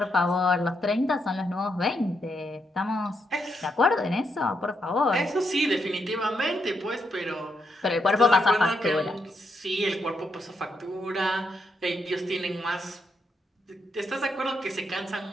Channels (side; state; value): both; normal; correlation 0.79